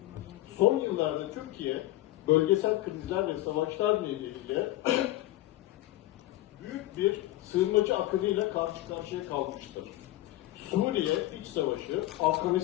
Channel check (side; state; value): right; quieter; 16.2 dB